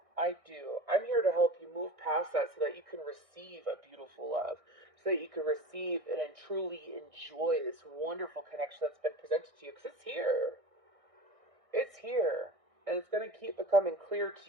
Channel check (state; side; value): late; left; 1.6 ms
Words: I do. I'm here to help you move past that so that you can receive a beautiful love, so that you can receive and truly enjoy this wonderful connection that's been presented to you, because it's here. It's here. And it's going to keep becoming clear